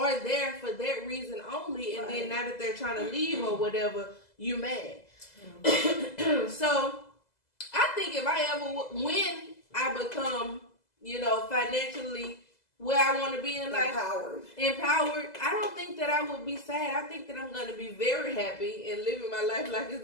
there for that reason only, and then now that they're trying to leave or whatever, you mad. So I think if when I become, financially where I want to be in life, empowered, I don't think that I would be sad. I think that I'm going to be very happy and living my life like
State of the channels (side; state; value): right; late; 2.0 ms